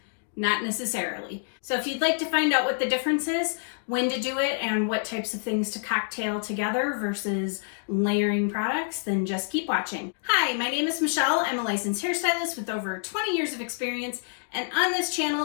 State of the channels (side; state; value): right; silent; digital silence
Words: Not necessarily. So if you'd like to find out what the difference is, when to do it, and what types of things to cocktail together versus layering products, then just keep watching. Hi, my name is Michelle. I'm a licensed hairstylist with over 20 years of experience, and on this